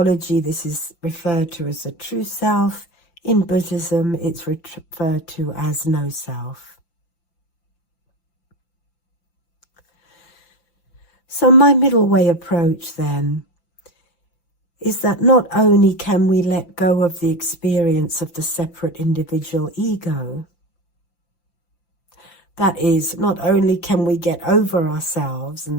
this is referred to as the true self. In Buddhism, it's referred to as no self. So my middle way approach then is that not only can we let go of the experience of the separate individual ego, that is, not only can we get over ourselves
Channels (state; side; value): late; right; 5.9 ms